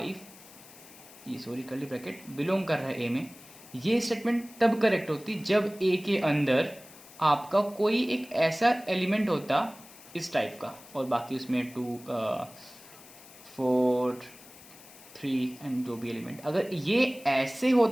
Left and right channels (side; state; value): left; noise; hiss, 20 dB below the sound